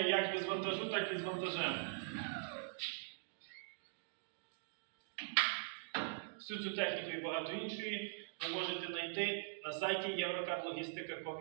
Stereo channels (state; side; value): silent; left; digital silence